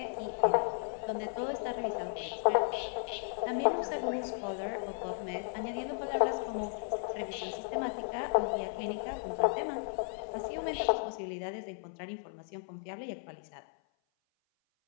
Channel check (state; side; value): silent; right; 54 dB below the other